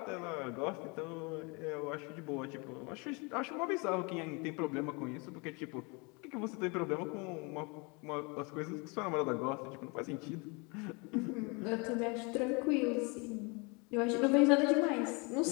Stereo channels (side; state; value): right; quieter; 30.3 dB